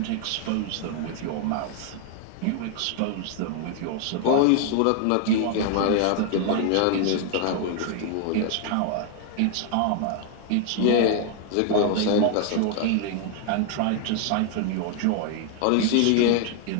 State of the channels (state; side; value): different; both; correlation 0.00